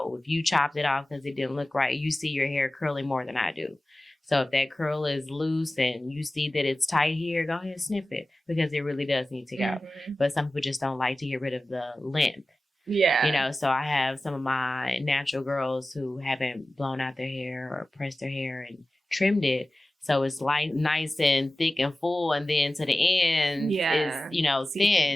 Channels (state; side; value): normal; both; correlation 0.96